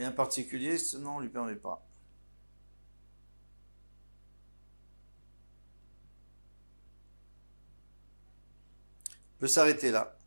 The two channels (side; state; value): both; inverted; correlation -1.00